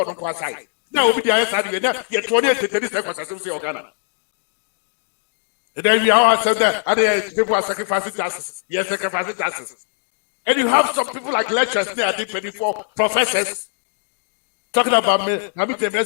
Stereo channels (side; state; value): right; silent; 65 dB below the other